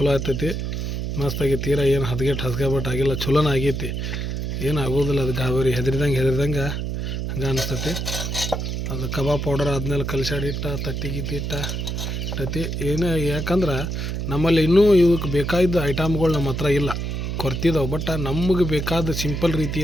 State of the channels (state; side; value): noise; right; hum, 3 dB below the sound